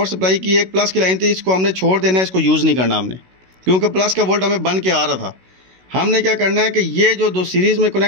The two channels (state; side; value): late; left; 16 ms